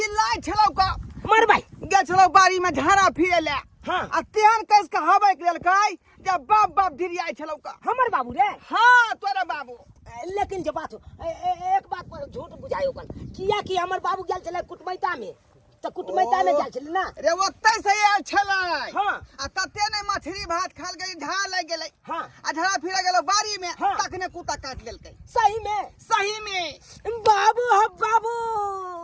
छलौ का। मर भाई। गेल छलौ बाड़ी में झाड़ा फिरे ले। हाँ। आ तेहन कस के हवे के लेलकै जब बाप बाप धिरियाय छलौ का। हमर बाबू रे। हाँ तोरा बाबू। लेकिन जो बात हो एक बात पर झूठ बुझायो कन किया कि हमर बाबू गेल छले कुटमैता में। त कुटमैता में गेल छले ना। रे ओत्ते से आयल छलै। हाँ। आ तते ने मछली भात खाल गई, ढा लग गेलै। हाँ। आ ढा फिरे गेलो बाड़ी में। हाँ। तखने कुत्ता काट लेलकै। सही में सही में बाबू हो बाबू।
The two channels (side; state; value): both; identical; correlation 1.00